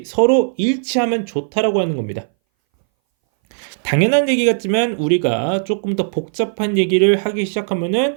서로 일치하면 좋다라고 하는 겁니다. 당연한 얘기 같지만 우리가 조금 더 복잡한 얘기를 하기 시작하면은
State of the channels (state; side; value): silent; left; 62 dB below the other